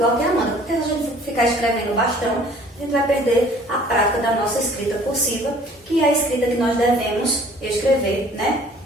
que a Amanda. Porque se a gente ficar escrevendo bastão, a gente vai perder a prática da nossa escrita cursiva, que é a escrita que nós devemos escrever, né?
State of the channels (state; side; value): normal; both; correlation 0.53